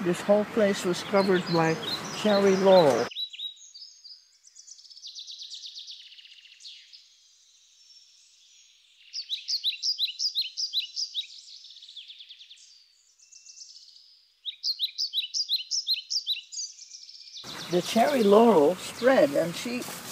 this whole place was covered by cherry laurel. The cherry laurel spread, and she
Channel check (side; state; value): both; identical; correlation 1.00